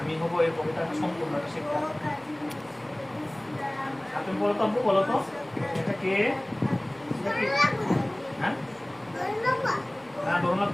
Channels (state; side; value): noise; right; hum, 29 dB below the sound